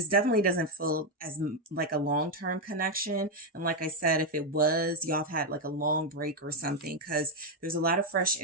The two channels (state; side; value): normal; both; correlation 0.04